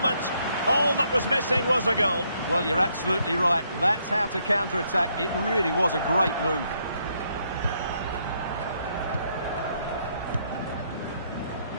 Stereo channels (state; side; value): inverted; both; correlation -0.73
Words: All that was missing was a goal. Well, you're absolutely right. That's how to counter-attack. It really was a great move.